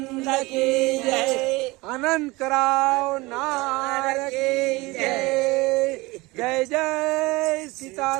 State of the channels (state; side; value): quieter; left; 22.5 dB